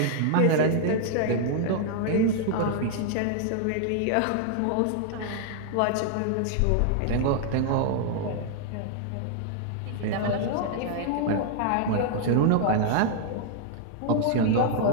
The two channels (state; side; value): different; both; correlation 0.00